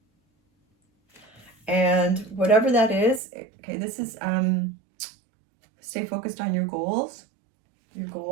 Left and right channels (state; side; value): drops out; left; at 3.2 s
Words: And whatever that is, okay, this is, stay focused on your goals, your